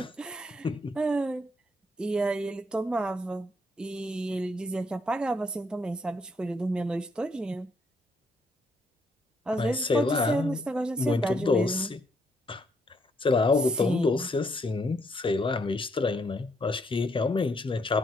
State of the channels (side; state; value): both; normal; correlation 0.73